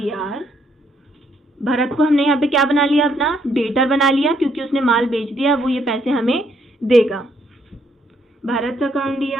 भरत को हमने यहाँ पे क्या बना लिया? अपना डेटर बना लिया, क्योंकि उसने माल बेच दिया, वो ये पैसे हमें देगा। Bharat account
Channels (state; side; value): normal; both; correlation 0.71